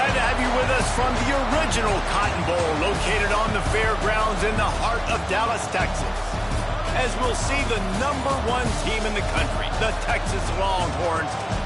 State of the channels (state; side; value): identical; both; correlation 1.00